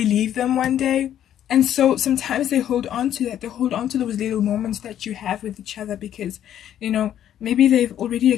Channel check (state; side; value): quieter; right; 10.8 dB